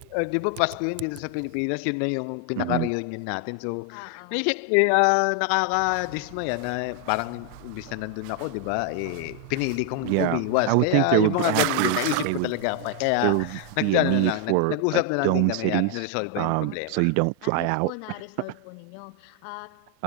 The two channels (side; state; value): both; different; correlation 0.00